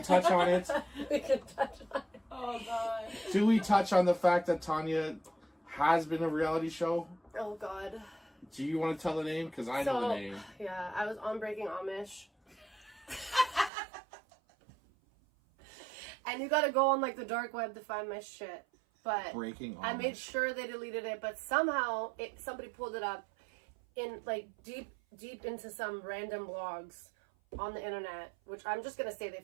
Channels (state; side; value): drops out; left; at 13.7 s